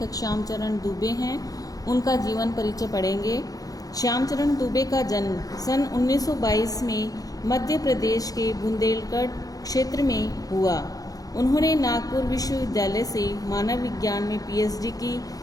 श्यामचरण दुबे हैं, उनका जीवन परिचय पढ़ेंगे। श्यामचरण दुबे का जन्म सन 1922 में मध्य प्रदेश के बुंदेलखंड क्षेत्र में हुआ। उन्होंने नागपुर विश्वविद्यालय से मानव विज्ञान में PhD की।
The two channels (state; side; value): late; right; 0.18 ms